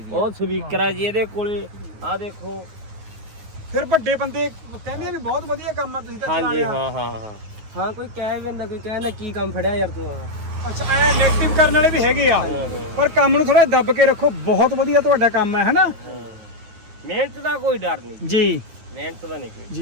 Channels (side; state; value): left; late; 9.4 ms